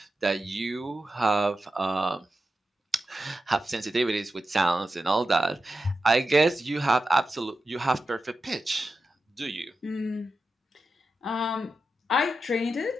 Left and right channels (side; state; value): both; normal; correlation 0.90